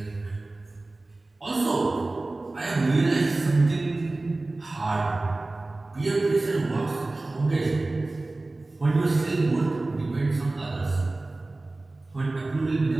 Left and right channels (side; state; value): left; quieter; 3.0 dB